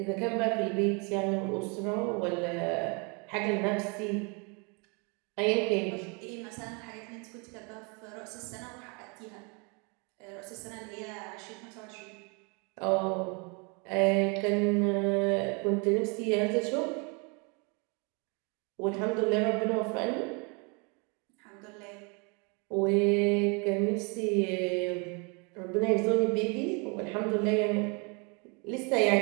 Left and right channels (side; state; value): left; quieter; 32.4 dB